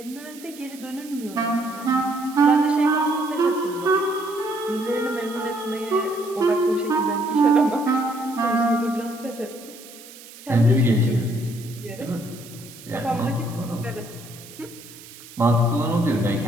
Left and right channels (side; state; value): right; noise; hiss, 18 dB below the sound